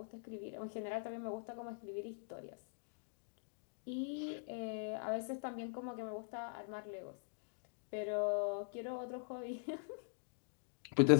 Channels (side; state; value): right; silent; digital silence